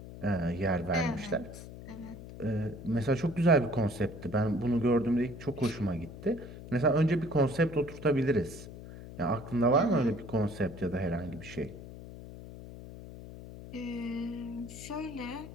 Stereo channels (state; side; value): noise; left; hum, 13 dB below the sound